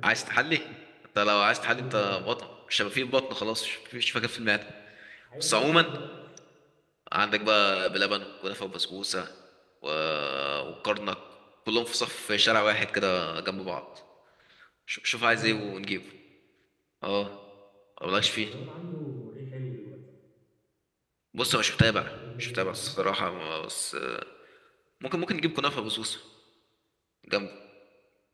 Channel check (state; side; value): identical; both; correlation 1.00